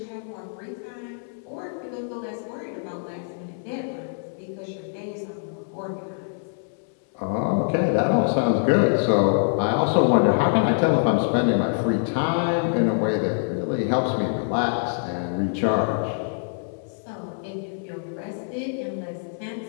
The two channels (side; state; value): right; silent; 62 dB below the other